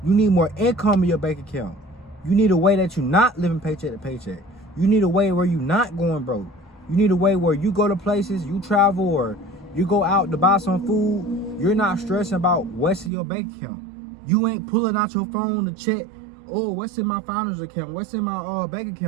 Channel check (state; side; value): drops out; left; at 13.1 s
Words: You need more income in your bank account. You need a way that you're not living paycheck to paycheck. You need a way where you're not going broke. You need a way where you go to places, you travel, or you go out to buy some food. You're not stressing about what's in your bank account. You ain't pulling out your phone to check, oh, what's in my founder's account? What's in my bank